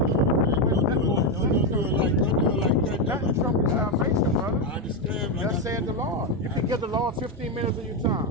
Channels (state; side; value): normal; both; correlation 0.07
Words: Nothing trump your salvation, brother. I understand. Thus said the Lord. You can give the Lord 15 minutes of your